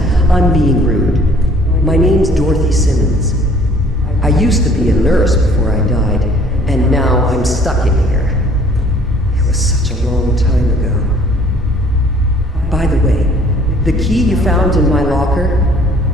I'm being rude. My name's Dorothy Simmons. I used to be a nurse before I died, and now I'm stuck in here. It was such a long time ago. By the way, the key you found in my locker,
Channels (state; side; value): normal; both; correlation 0.56